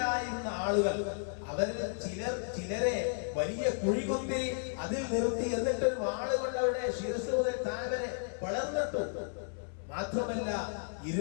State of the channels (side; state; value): right; silent; 55 dB below the other